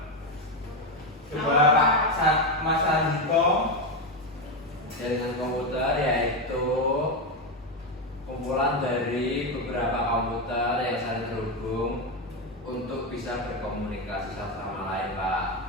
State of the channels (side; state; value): both; normal; correlation 0.10